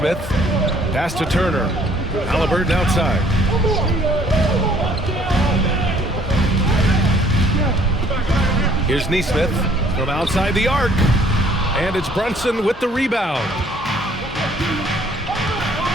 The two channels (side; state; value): both; normal; correlation 0.60